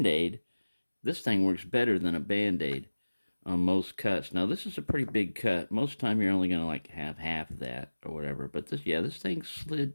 this thing works better than a Band-Aid on most cuts. Now, this is a pretty big cut. Most time you're only going to have half of that or whatever. But this thing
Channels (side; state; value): both; inverted; correlation -1.00